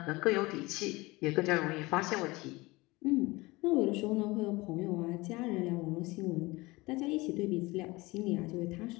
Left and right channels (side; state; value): right; quieter; 22.3 dB